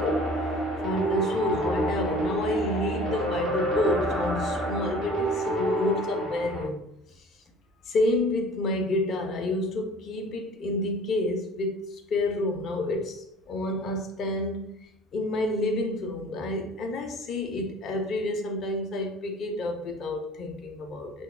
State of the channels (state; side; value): normal; both; correlation 0.46